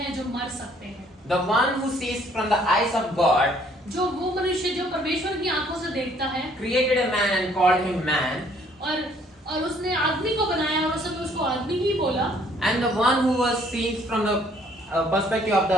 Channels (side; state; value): both; normal; correlation 0.62